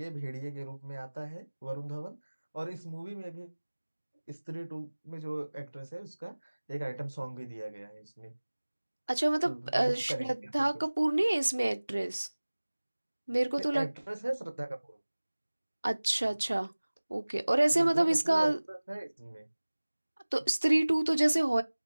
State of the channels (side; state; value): both; inverted; correlation -1.00